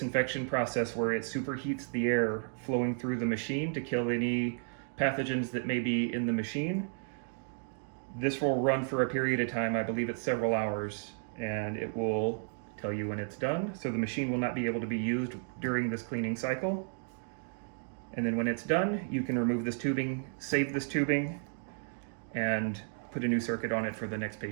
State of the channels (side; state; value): left; silent; 56 dB below the other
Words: process where it superheats the air flowing through the machine to kill any pathogens that may be in the machine. This will run for a period of time, I believe it's several hours, and it will tell you when it's done. So the machine will not be able to be used during this cleaning cycle. And then when it's done, you can remove this tubing, save this tubing, and put a new circuit on it for the next